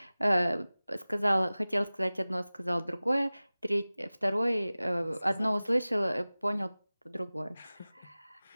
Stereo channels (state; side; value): inverted; both; correlation -0.98